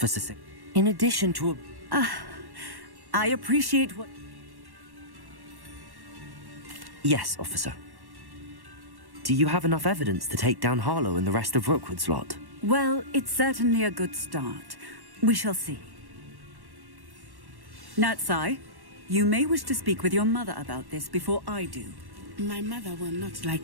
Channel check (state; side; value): late; left; 1.1 ms